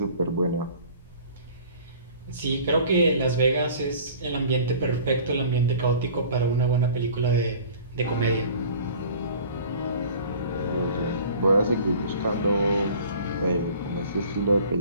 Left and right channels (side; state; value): both; inverted; correlation -0.46